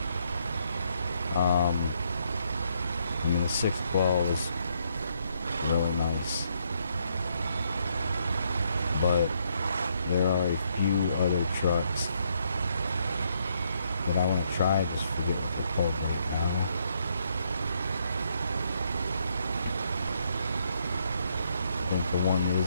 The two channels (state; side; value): inverted; both; correlation -0.74